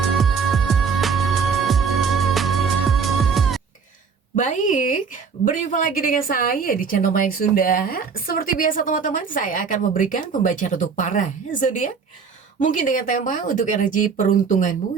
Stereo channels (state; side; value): quieter; left; 5.7 dB